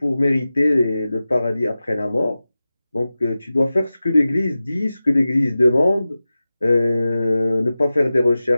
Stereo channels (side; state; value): both; inverted; correlation -0.95